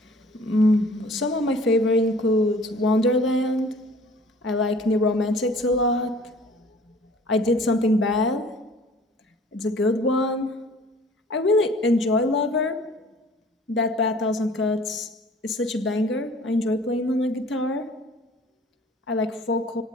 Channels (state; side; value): normal; both; correlation 0.51